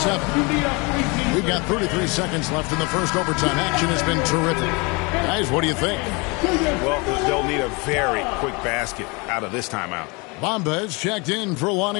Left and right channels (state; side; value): quieter; right; 28.7 dB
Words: We've got 33 seconds left in the first overtime. Action has been terrific. Guys, what do you think? Well, they'll need a very quick basket out of this timeout. Bamba is checked in for